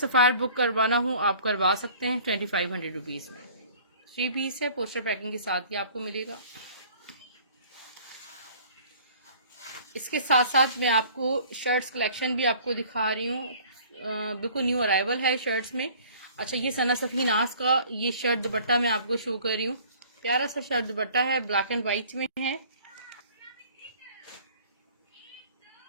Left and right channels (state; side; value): inverted; both; correlation -0.51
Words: बुक करवाना हो आप करवा सकते हैं 2500 रुपीज में। 3 पीस है, पोस्टर पैकिंग के साथ ही आपको मिलेगा। इसके साथ साथ मैं आपको शर्ट्स कलेक्शन भी आपको दिखा रही हूँ। बिल्कुल न्यू अराइवल है शर्ट्स में। अच्छा, ये सना सफी नाज का ये शर्ट दुपट्टा मैं आपको शो कर रही हूँ। प्यारा सा शर्ट दुपट्टा है, ब्लैक एंड व्हाइट में है।